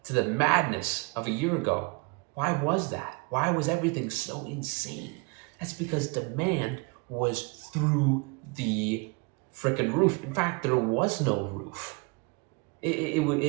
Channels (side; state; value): left; quieter; 30.1 dB